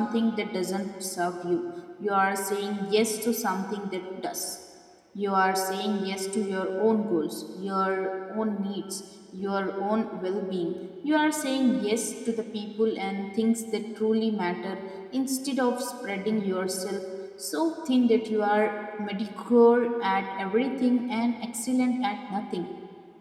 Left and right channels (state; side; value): identical; both; correlation 1.00